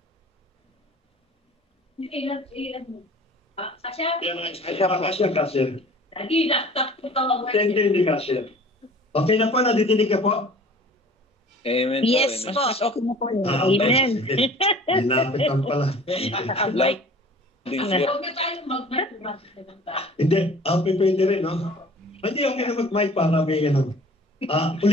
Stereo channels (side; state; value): both; normal; correlation 0.46